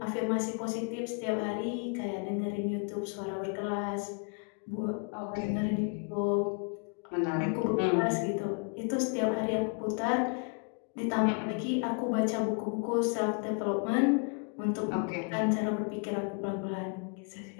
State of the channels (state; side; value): quieter; right; 37.9 dB